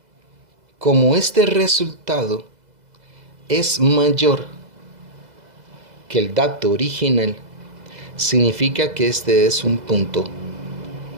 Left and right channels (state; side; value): late; left; 2.0 ms